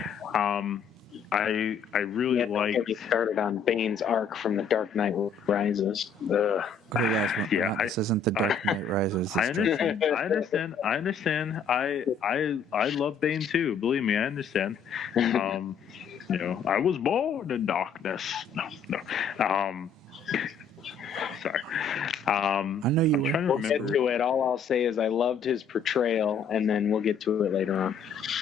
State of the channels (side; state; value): right; quieter; 5.6 dB